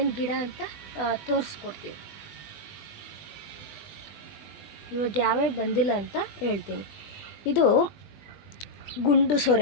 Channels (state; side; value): late; right; 20 ms